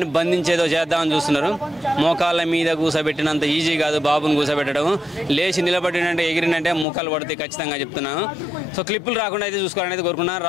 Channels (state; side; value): drops out; right; at 6.9 s